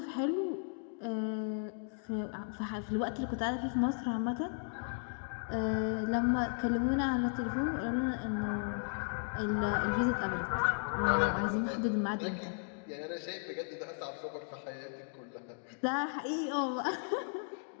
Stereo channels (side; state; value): right; silent; 54 dB below the other